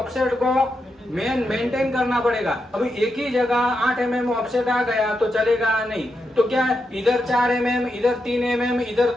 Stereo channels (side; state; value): both; normal; correlation 0.85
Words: को मेंटेन करना पड़ेगा। अभी एक ही जगह 8 mm ऑफसेट आ गया तो चलेगा नहीं, तो क्या है इधर 4 mm, इधर 3 mm, इधर